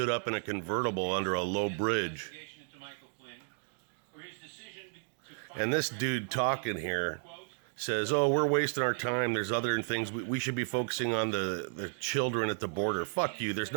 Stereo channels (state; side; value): silent; left; 56 dB below the other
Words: up in a convertible under a low bridge. And this dude talking here says, oh, we're wasting our time. There's other things. We should be focusing on the children at the border. Fuck you. There's